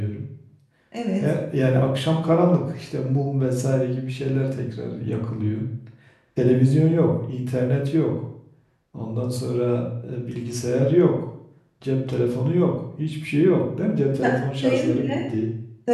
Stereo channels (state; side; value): identical; both; correlation 1.00